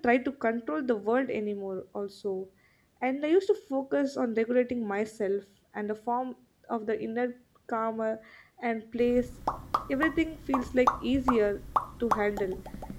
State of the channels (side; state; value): both; identical; correlation 1.00